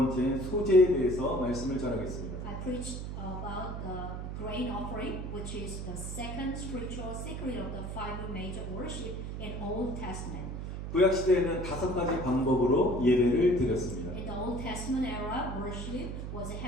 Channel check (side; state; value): right; noise; hum, 6 dB below the sound